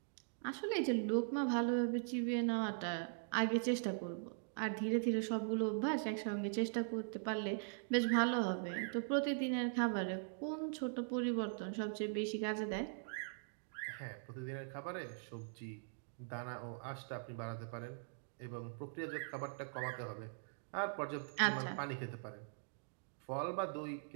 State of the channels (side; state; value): left; silent; digital silence